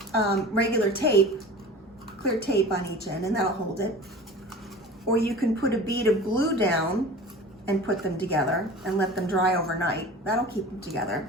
regular tape, clear tape on each end, and that'll hold it. Or you can put a bead of glue down and put them together and let them dry overnight. That'll keep them together.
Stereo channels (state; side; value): normal; both; correlation 0.38